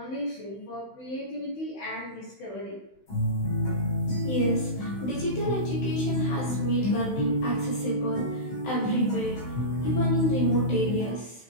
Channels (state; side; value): late; right; 16 ms